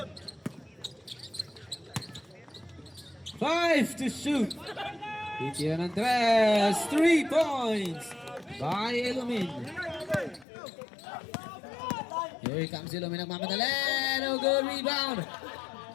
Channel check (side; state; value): right; drops out; at 10.5 s